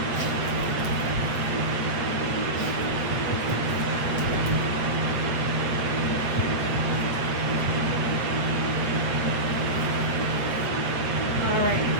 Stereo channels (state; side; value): late; left; 8.0 ms